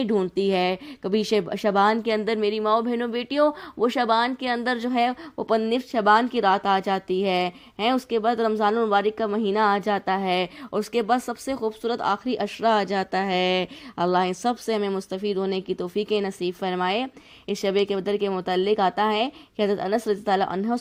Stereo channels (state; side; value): identical; both; correlation 1.00